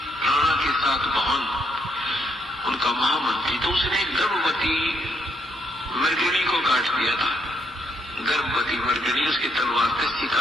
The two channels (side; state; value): both; normal; correlation 0.74